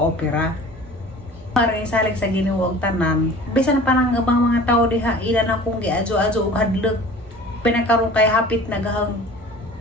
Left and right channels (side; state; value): both; normal; correlation 0.43